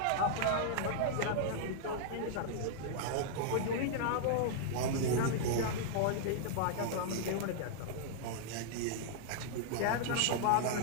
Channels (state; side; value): different; both; correlation -0.01